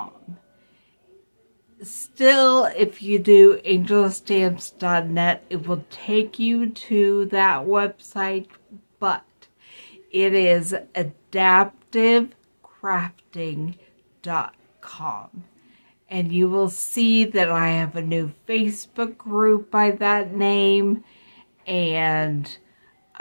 Still, if you do angelstamps.net, it will take you to that website, but it is adaptivecrafting.com. And you will see that I have a new Facebook group by that name, and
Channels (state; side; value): inverted; both; correlation -1.00